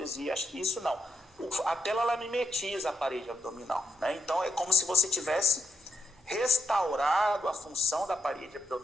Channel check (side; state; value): both; normal; correlation 0.82